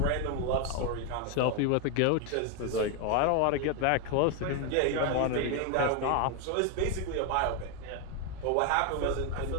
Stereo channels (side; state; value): both; different; correlation 0.01